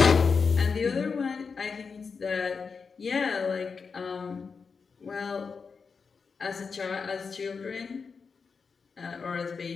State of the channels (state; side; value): quieter; right; 5.3 dB